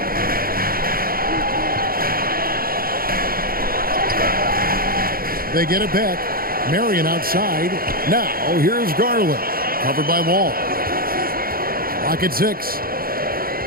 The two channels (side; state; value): left; late; 0.43 ms